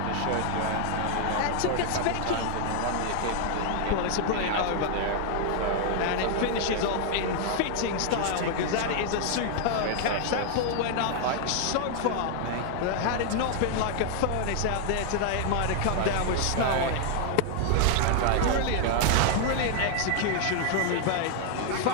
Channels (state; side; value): different; both; correlation 0.00